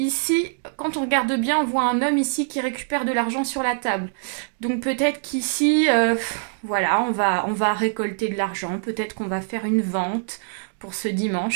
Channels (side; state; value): left; silent; 63 dB below the other